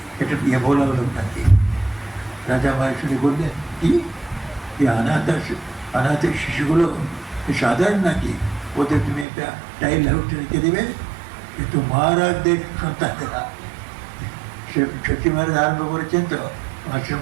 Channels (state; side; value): drops out; left; at 9.2 s